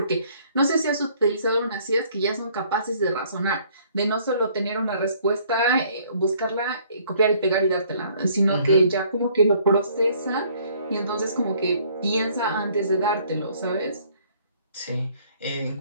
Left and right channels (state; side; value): inverted; both; correlation -0.61